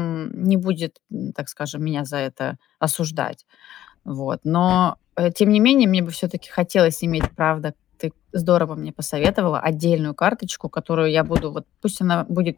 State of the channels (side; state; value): right; quieter; 12.7 dB